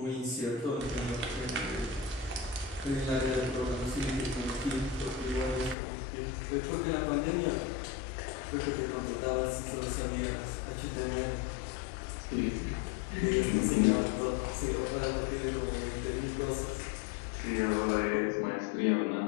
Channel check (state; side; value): drops out; right; at 5.8 s